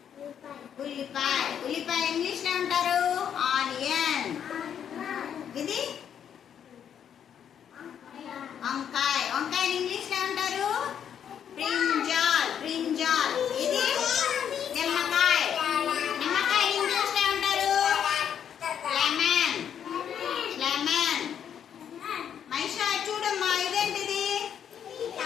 ఉల్లిపాయ. ఉల్లిపాయ ఇంగ్లీష్ లో అంటారు ఆనియన్. ఇది వంకాయ. వంకాయ ఇంగ్లీష్ లో అంటారు బ్రింజాల్. బ్రింజాల్. ఇది నిమ్మకాయ. నిమ్మకాయ ఇంగ్లీష్ లో అంటారు లెమన్. లెమన్. మైషా చూడమ్మా, ఇదేంటిది?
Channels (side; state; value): right; quieter; 8.7 dB